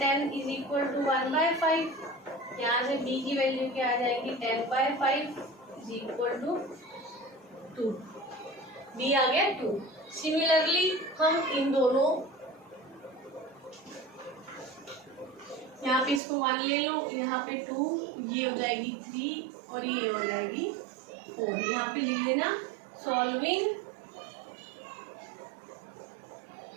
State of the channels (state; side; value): drops out; left; at 16.2 s